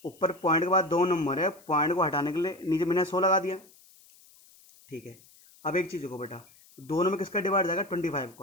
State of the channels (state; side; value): noise; left; hiss, 26 dB below the sound